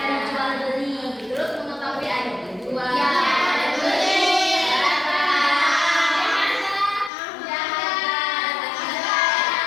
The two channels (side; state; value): right; drops out; at 7.1 s